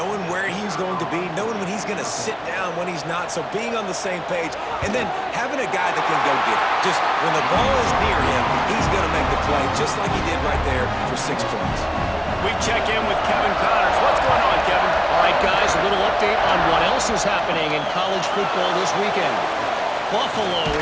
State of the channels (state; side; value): identical; both; correlation 1.00